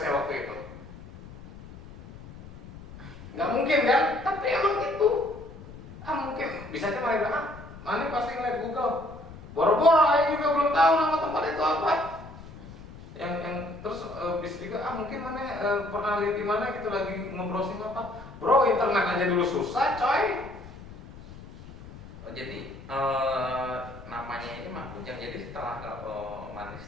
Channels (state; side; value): noise; left; rumble, 16 dB below the sound